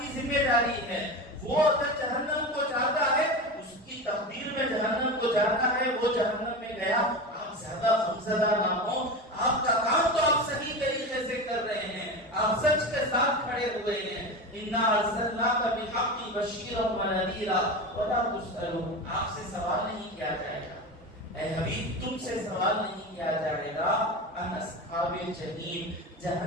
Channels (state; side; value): normal; both; correlation 0.25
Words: ذمہ داری ہے. وہ اگر جہنم کو جاتا ہے اس کی تقدیر میں جہنم کو جاتا ہے، وہ جہنم میں گیا. آپ زیادہ غمزدہ نہ ہو. آپ کا کام تو آپ صحیح طریقے سے کر رہے ہیں، آپ سچ کے ساتھ کھڑے ہوئے ہیں. انا ارسلناک بالحق بشیرا ونذیرا ولا تسألون، آپ سے سوال نہیں کیا جائے گا اے حبیب، تم سے سوال نہیں کیا جائے گا ان اصحاب الجحیم،